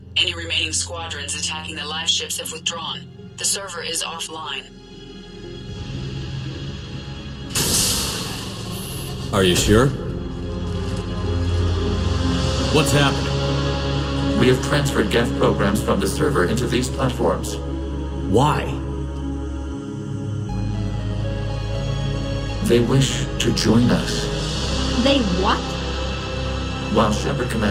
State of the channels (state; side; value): identical; both; correlation 1.00